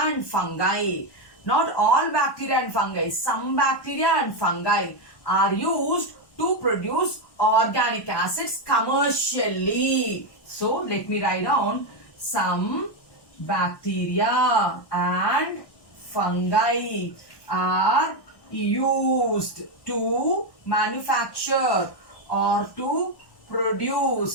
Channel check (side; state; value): right; late; 1.1 ms